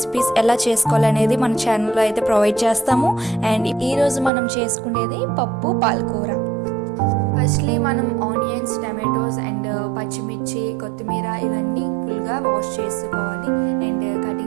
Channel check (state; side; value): drops out; left; at 4.3 s